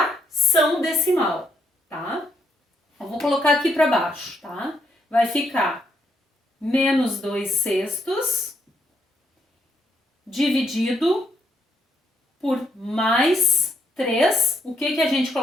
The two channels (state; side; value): normal; both; correlation 0.75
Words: decimal, tá? Eu vou colocar aqui para baixo, tá? Vai ficar menos 2/6 dividido por mais 3. O que a gente